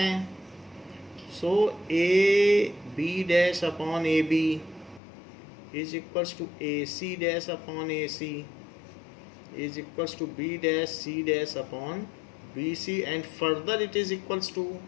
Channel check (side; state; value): right; drops out; at 5.0 s